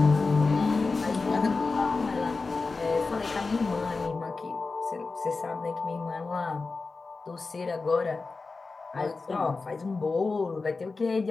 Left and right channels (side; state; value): right; quieter; 4.0 dB